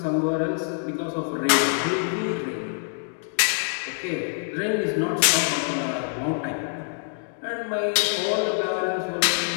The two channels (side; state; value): right; silent; digital silence